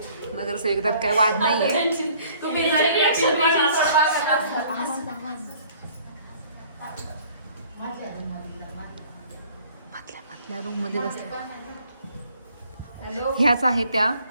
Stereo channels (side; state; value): both; inverted; correlation -0.57